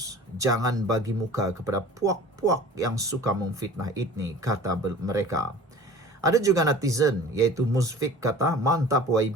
jangan bagi muka kepada puak-puak yang suka memfitnah ini, kata mereka. Ada juga netizen, iaitu Musfik, kata, mantap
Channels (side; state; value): both; normal; correlation 0.43